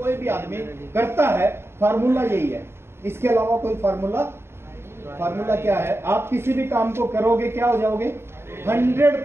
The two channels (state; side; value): late; left; 0.12 ms